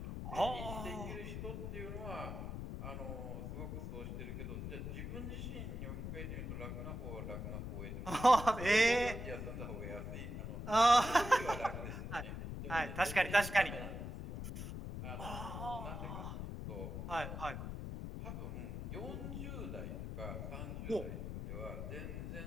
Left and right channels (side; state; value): left; noise; rumble, 5 dB below the sound